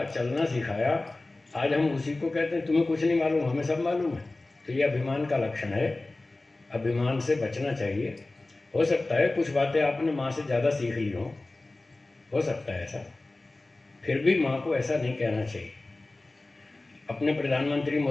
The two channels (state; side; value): quieter; right; 3.0 dB